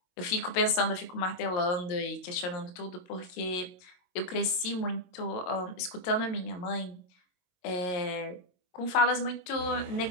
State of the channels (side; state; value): right; late; 22 ms